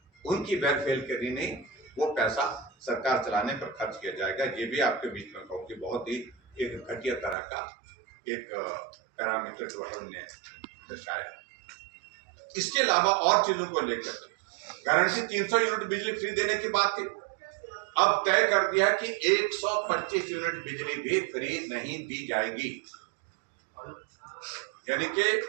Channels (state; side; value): drops out; left; at 7.4 s